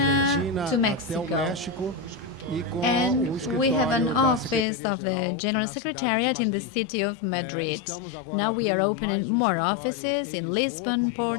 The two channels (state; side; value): drops out; right; at 4.7 s